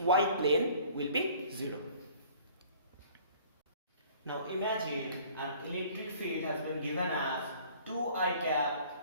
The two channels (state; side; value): inverted; both; correlation -0.52